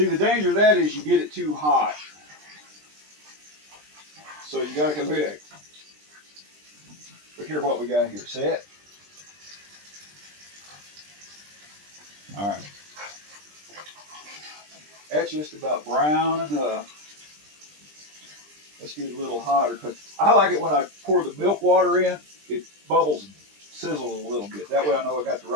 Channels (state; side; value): late; left; 20 ms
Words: the danger of that is you get it too hot. So you got to look at it. Look here what we got here. See it? All right. That's just about brown enough. Let's get it a little hotter. Cause I like it when I pour the milk water in, it bubbles and sizzles a little bit. That way I know I got the